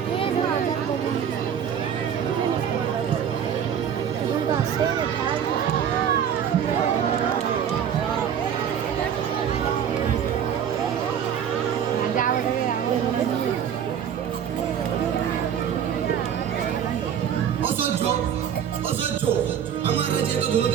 আমার রাজ্যে তো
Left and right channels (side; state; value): left; quieter; 8.6 dB